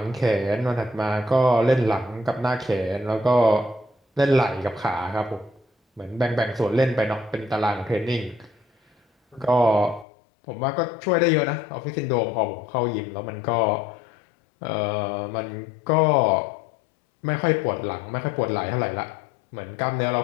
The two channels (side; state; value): right; drops out; at 10.1 s